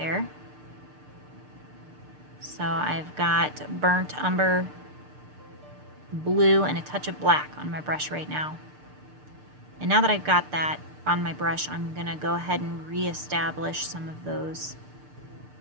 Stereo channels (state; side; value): late; left; 6.7 ms